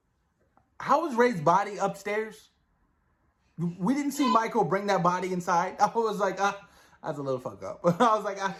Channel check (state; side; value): identical; both; correlation 1.00